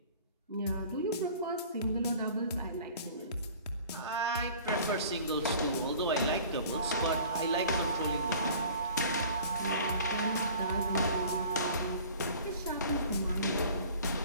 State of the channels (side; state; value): both; inverted; correlation -0.47